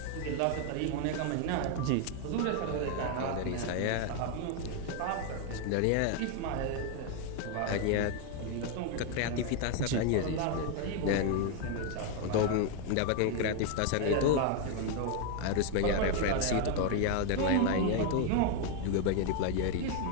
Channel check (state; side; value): different; both; correlation 0.01